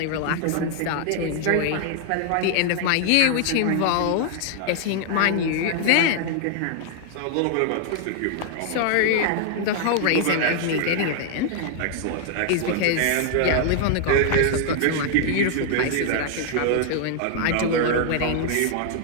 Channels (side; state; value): both; different; correlation 0.00